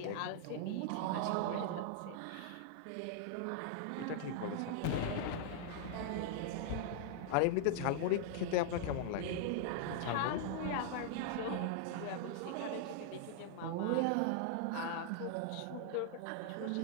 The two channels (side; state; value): both; different; correlation -0.01